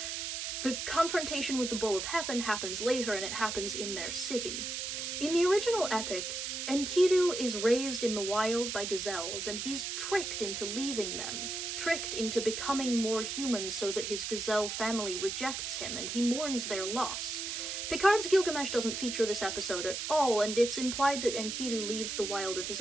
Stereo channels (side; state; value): right; noise; hiss, 4 dB below the sound